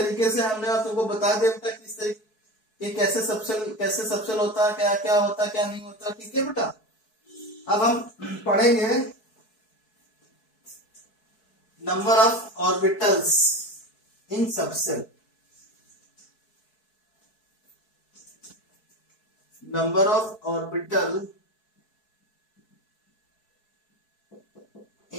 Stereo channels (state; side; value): late; right; 4.6 ms